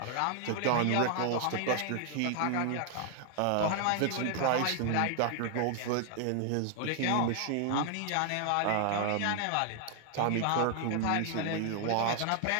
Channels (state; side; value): different; both; correlation 0.00